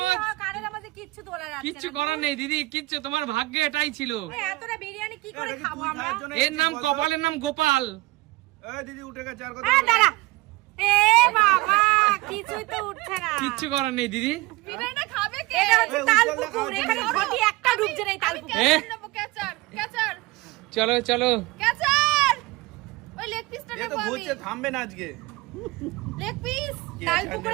কারের আমাদের কিচ্ছু তোলা যাচ্ছে না। কিচ্ছু করার নেই দিদি, কিচ্ছু, তোমার ভাগ্যে এটাই ছিল। এই এতটা বিরিয়ানি কি করে খাবো আমরা? এর নাম কপালের নাম গোপাল। এই দিদি উঠে গেছে, আর কথা আরে বলো। দাঁড়া। এ বাবা, কিছুই তো উঠছে না। কিচ্ছু করার নেই দিদি। বিরিয়ানিটা খাবে কে? এটা হচ্ছে তাল পুকুর, এখানে ঘটি একটা ডুবছে না এই তাল পুকুর। হ্যাঁ? ক্যাচার, ক্যাচার, চলো চলো, ক্যাচার। ওই লেগ পিসটা এ তো নেবো আমি। ঘুরছে, থামবে না আজকে। Leg piece. কে তাল ছাড়বে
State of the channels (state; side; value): quieter; left; 21.1 dB